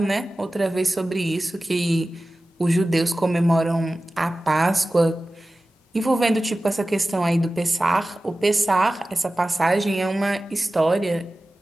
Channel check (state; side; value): normal; both; correlation 0.96